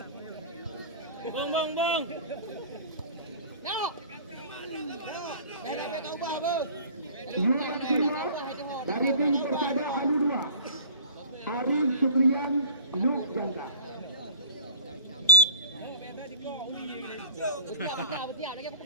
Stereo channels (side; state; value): both; inverted; correlation -0.43